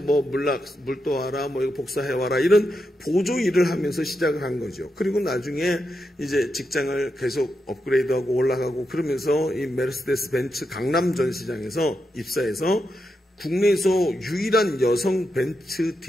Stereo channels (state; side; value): normal; both; correlation 0.85